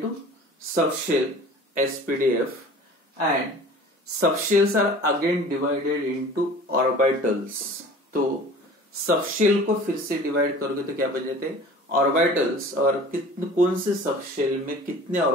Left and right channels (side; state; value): both; normal; correlation 0.44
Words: subshell SPDF, and subshells are again divided into orbitals. तो subshell को फिर से divide करोगे तो क्या बन जाते हैं ऑर्बिटल्स, और कितने कौन से सबशेल में कितने